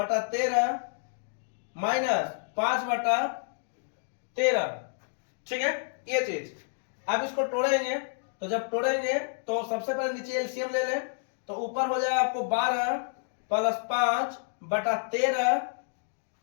माइनस 5/13। ठीक है, ये चीज। अब इसको तोड़ेंगे, तो जब तोड़ेंगे तो सबसे पहले नीचे एलसीएम ले लें, तो ऊपर हो जाएगा आपको 12 प्लस 5/13,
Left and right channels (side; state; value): right; silent; digital silence